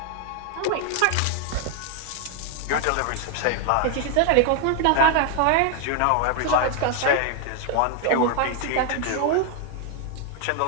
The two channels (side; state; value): both; different; correlation 0.00